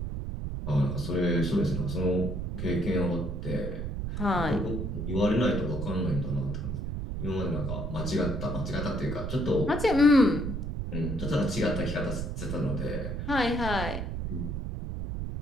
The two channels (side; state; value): right; noise; rumble, 4 dB below the sound